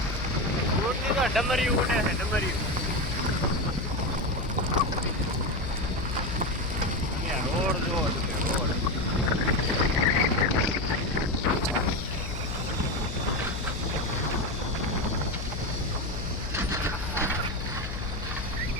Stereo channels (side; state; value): left; noise; hum, 6 dB below the sound